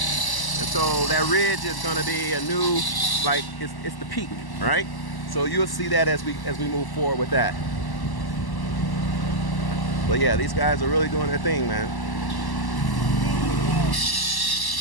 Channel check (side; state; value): right; late; 1.1 ms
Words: so that ridge is going to be a new, like, it's the peak, right? So you'll see that as we move forward with that. But yeah, these guys are really doing their thing, man.